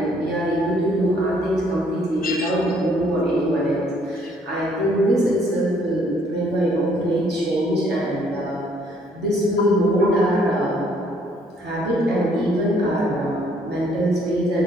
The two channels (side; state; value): both; normal; correlation 0.65